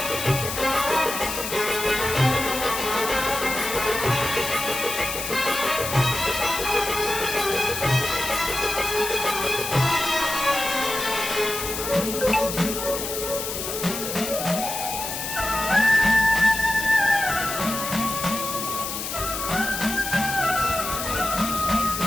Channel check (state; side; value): noise; left; hiss, 5 dB below the sound